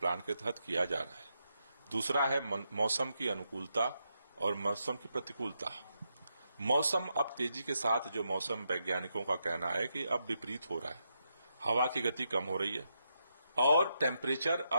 के तहत किया जा रहा है। दूसरा है मौसम की अनुकूलता और मौसम की प्रतिकूलता। मौसम अब तेजी के साथ जो मौसम वैज्ञानिकों का कहना है कि अब विपरीत हो रहा है, हवा की गति कम हो रही है और टेम्परेचर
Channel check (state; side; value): inverted; both; correlation -0.83